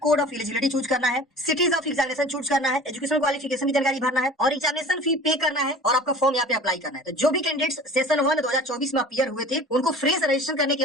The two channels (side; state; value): both; normal; correlation 0.42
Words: of eligibility choose करना है, सिटीज ऑफ एग्जामिनेशन चूज करना है, एजुकेशन क्वालिफिकेशन की जानकारी भरना है और एग्जामिनेशन फी पे करना है और आपका फॉर्म यहाँ पे अप्लाई करना है। तो जो भी कैंडिडेट्स सेशन 1 2024 में अपीयर हुए थे उनको फ्रेश रजिस्ट्रेशन करने की